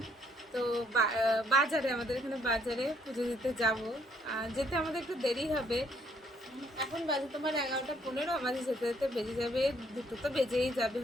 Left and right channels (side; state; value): both; normal; correlation 0.68